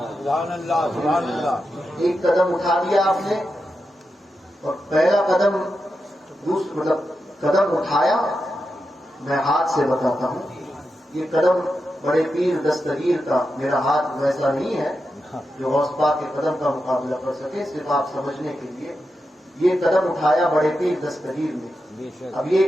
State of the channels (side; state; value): both; normal; correlation 0.88